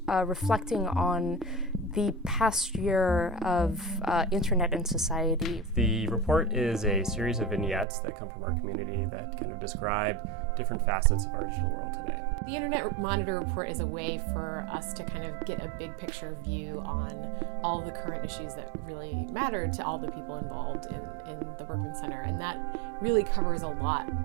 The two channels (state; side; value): drops out; left; at 7.9 s